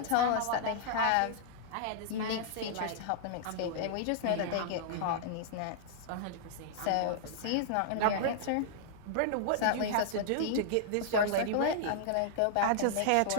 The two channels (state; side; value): different; both; correlation -0.01